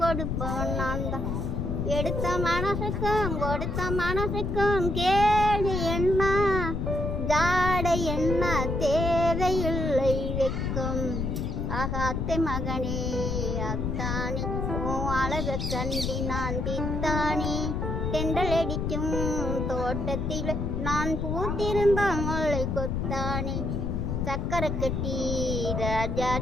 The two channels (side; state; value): left; noise; rumble, 1 dB below the sound